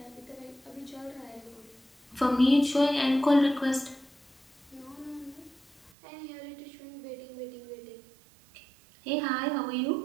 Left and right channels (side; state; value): left; drops out; at 5.9 s